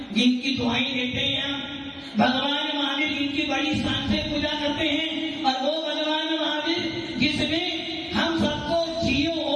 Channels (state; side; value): identical; both; correlation 1.00